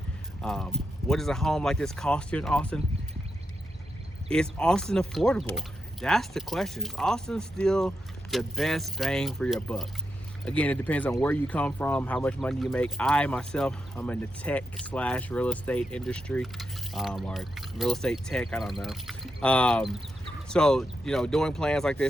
What does a home like this cost here in Austin? Is Austin affordable? That's the question. Is Austin still the best bang for your buck? Again, it depends on where you come from, how much money you make. I'm in the tech / real estate industry, or real estate tech, I don't know. So, you know, doing plans like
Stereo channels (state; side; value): normal; both; correlation 0.85